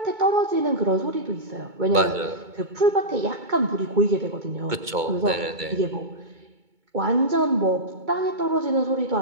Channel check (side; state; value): left; late; 2.2 ms